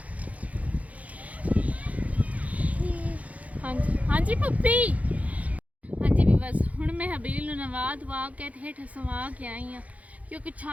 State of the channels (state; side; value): late; left; 0.069 ms